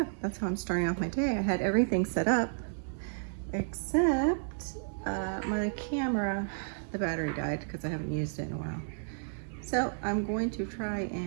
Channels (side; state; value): left; silent; digital silence